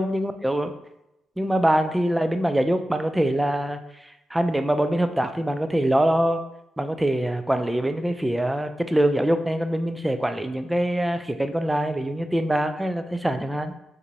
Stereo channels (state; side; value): normal; both; correlation 0.94